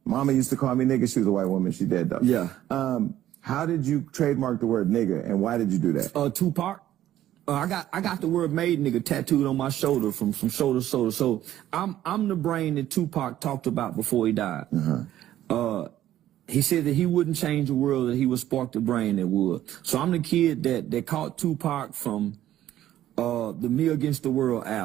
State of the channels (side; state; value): left; quieter; 12.7 dB